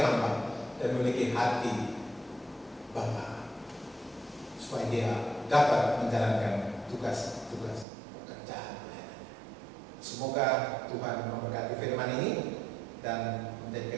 hamba, dan memiliki hati Bapa, supaya dia dapat menjalankan tugas-tugas pekerjaan. Semoga Tuhan memberkati firman ini dan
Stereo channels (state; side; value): drops out; left; at 7.9 s